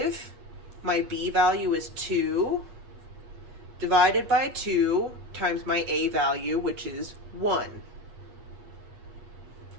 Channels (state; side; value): late; left; 8.4 ms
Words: my b value is 2, divided by 2 times my a value, which is 1.